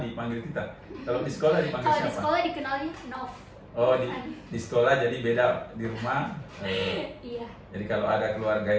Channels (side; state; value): both; identical; correlation 1.00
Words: dipanggil Tita. Kalau di sekolah dipanggil siapa? Kalau di sekolah dikenalnya Nov. Oh, di sekolah jadi beda, di rumah. Iya. Jadi kalau ada keluarga